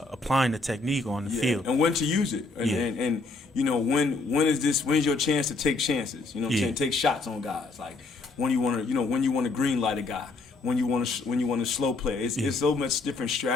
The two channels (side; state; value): right; quieter; 3.6 dB